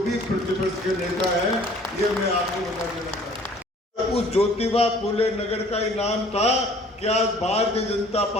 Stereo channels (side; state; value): both; normal; correlation 0.53